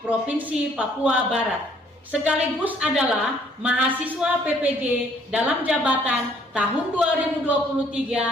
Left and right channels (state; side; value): normal; both; correlation 0.63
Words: Provinsi Papua Barat. Sekaligus adalah mahasiswa PPG dalam jabatan tahun